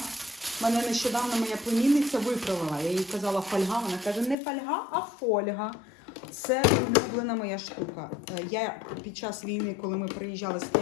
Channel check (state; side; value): drops out; right; at 4.4 s